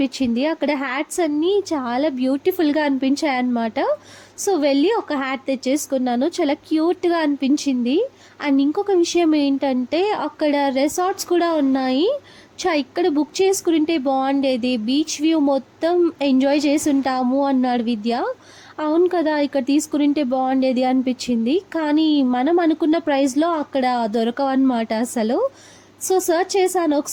అక్కడ హ్యాట్స్ అన్నీ చాలా బ్యూటిఫుల్గా అనిపించాయి అన్నమాట. సో వెళ్ళి ఒక హ్యాట్ తెచ్చేసుకున్నాను, చాలా క్యూట్గా అనిపించింది. అండ్ ఇంకొక విషయం ఏంటంటే అక్కడ రిసార్ట్స్ కూడా ఉన్నాయి. ఇక్కడ బుక్ చేసుకుంటే బాగుండేది, బీచ్ వ్యూ మొత్తం ఎంజాయ్ చేసి ఉంటాము అన్నాడు విద్య. అవును కదా, ఇక్కడ తీసుకుంటే బాగుండేది అనిపించింది. కానీ మనం అనుకున్న ప్రైస్లో అక్కడ దొరకవన్నమాట అసలు. సో సర్చ్ చేశాను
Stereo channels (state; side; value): identical; both; correlation 1.00